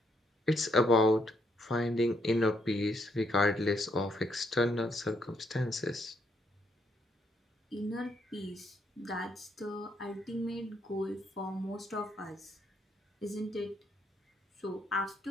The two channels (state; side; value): normal; both; correlation 0.74